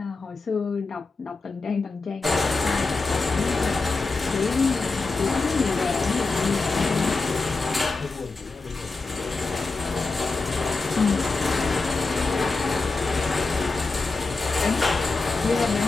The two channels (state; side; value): quieter; right; 3.8 dB